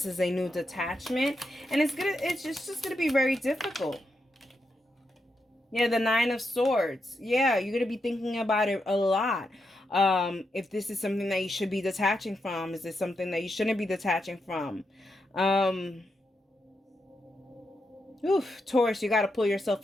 is a new detachment, and it's just gonna be very difficult. Yeah, the Nine of Swords. Yeah, you're gonna be thinking about it a lot. If this is something that you should be detaching from, is this something that you shouldn't be detaching from? Taurus, you got to pull yourself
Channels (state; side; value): normal; both; correlation 0.84